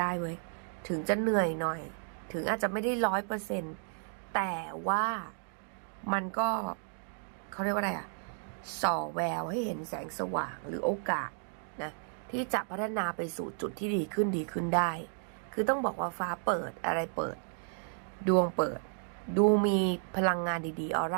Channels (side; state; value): left; silent; 56 dB below the other